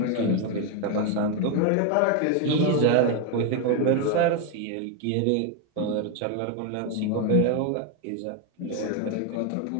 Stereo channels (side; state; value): both; different; correlation 0.02